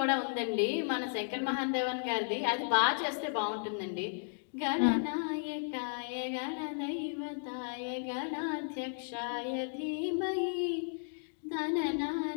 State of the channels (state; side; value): silent; right; digital silence